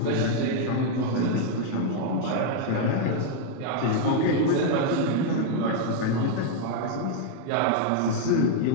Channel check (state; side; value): different; both; correlation 0.00